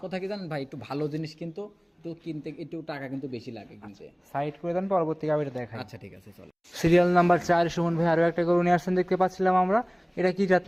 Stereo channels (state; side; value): identical; both; correlation 1.00